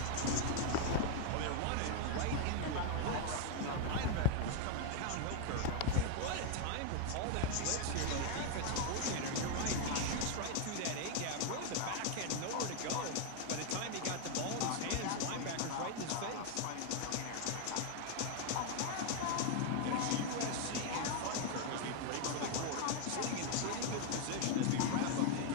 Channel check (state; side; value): different; both; correlation 0.00